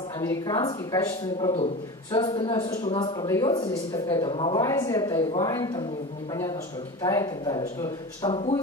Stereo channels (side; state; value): both; normal; correlation 0.30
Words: американский качественный продукт. Все остальное, все, что у нас продается здесь, это какая-то Малайзия, Тайвань, там непонятно что, Китай и так далее, что